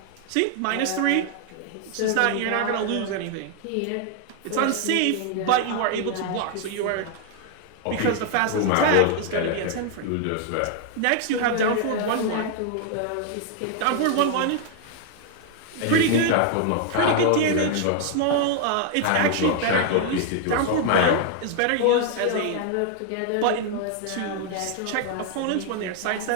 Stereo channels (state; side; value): different; both; correlation 0.00